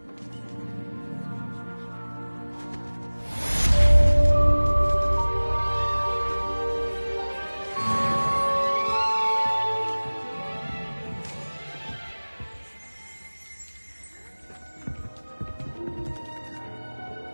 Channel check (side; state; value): both; inverted; correlation -1.00